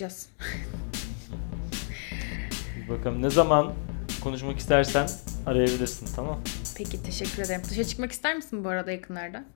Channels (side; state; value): right; silent; 58 dB below the other